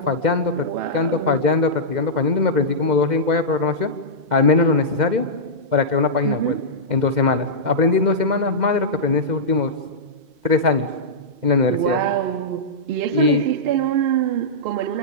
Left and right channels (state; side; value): late; left; 2.1 ms